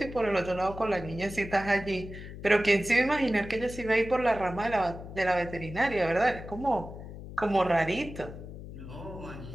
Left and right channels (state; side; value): noise; left; hum, 12 dB below the sound